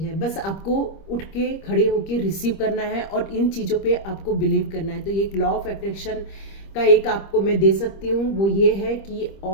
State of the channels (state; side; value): late; right; 25 ms